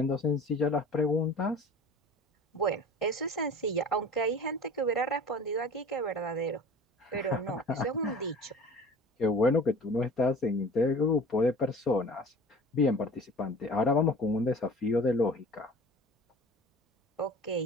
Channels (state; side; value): normal; both; correlation 0.42